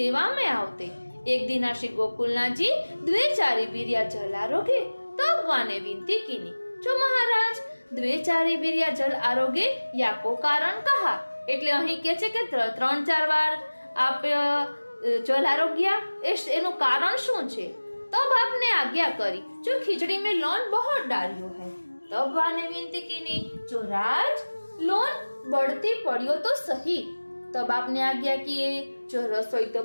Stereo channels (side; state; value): both; inverted; correlation -1.00